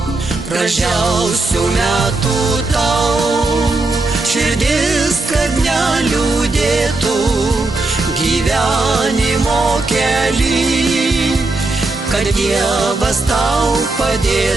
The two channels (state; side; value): quieter; left; 3.2 dB